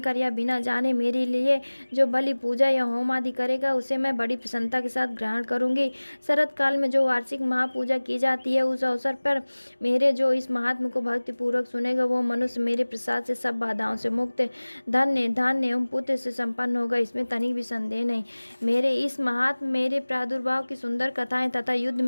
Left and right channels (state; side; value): inverted; both; correlation -1.00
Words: या बिना जाने मेरे लिए जो बलि, पूजा या होम आदि करेगा, उसे मैं बड़ी प्रसन्नता के साथ ग्रहण करूंगी। शरत काल में जो वार्षिक महापूजा की जाती है, उस अवसर पर मेरे जो इस महात्म को भक्ति पूर्वक सुनेगा, वो मनुष्य मेरे प्रसाद से सब बाधाओं से मुक्त, धन्य, धान्य एवं पुत्र से संपन्न होगा। इसमें तनिक भी संदेह नहीं। मेरे इस महात्म मेरे प्रादुर्भाव की सुंदर कथाएं तथा युद्ध